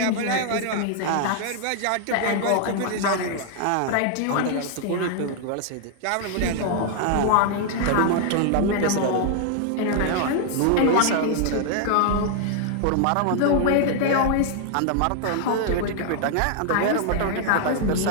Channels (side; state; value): both; different; correlation 0.00